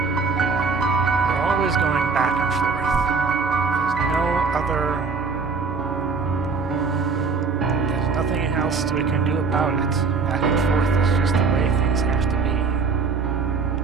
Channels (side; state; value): left; quieter; 4.6 dB